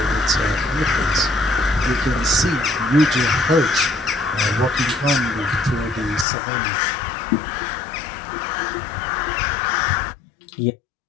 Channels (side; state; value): right; drops out; at 6.2 s